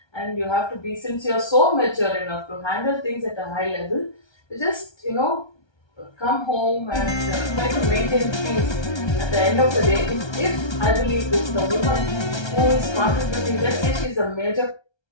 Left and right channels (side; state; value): right; late; 1.3 ms